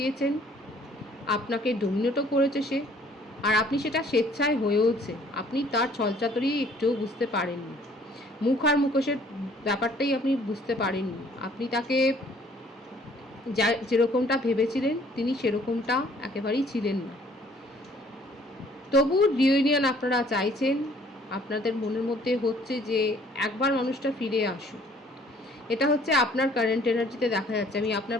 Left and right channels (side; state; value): both; normal; correlation 0.58